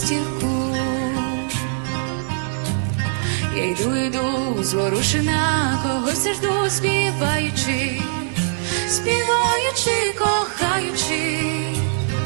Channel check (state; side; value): silent; left; digital silence